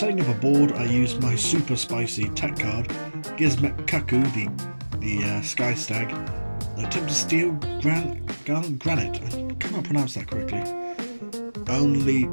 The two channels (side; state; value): both; inverted; correlation -1.00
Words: up a board, I used my super spicy tech card, Gizmet Kaku, the Sky Stag, and attempt to steal Gallant Granite. I cannot pronounce that correctly. Only